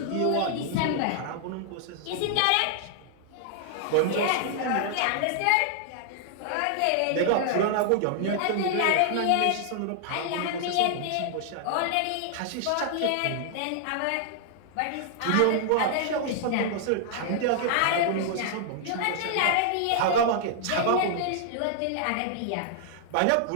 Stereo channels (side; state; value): both; different; correlation -0.01